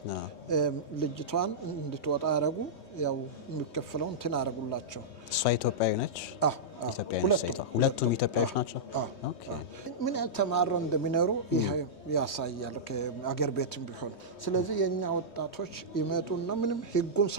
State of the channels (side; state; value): right; late; 3.2 ms